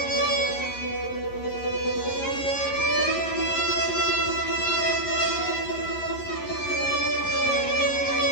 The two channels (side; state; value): right; late; 11 ms